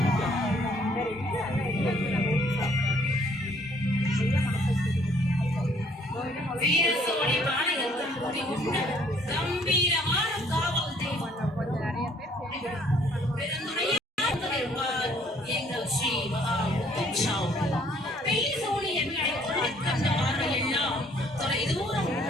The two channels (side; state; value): both; normal; correlation 0.62